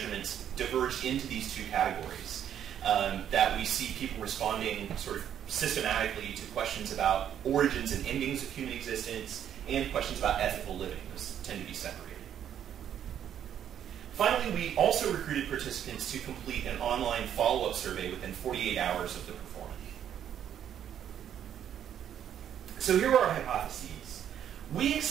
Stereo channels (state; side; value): quieter; left; 9.7 dB